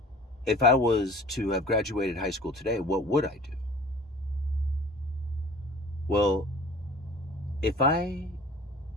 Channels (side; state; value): both; normal; correlation 0.46